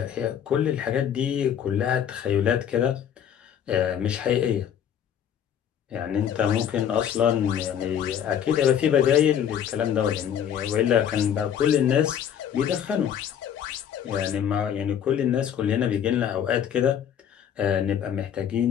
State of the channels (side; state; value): right; quieter; 9.1 dB